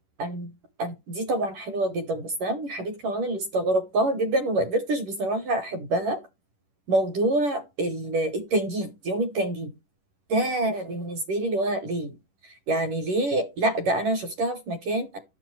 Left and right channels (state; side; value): late; left; 11 ms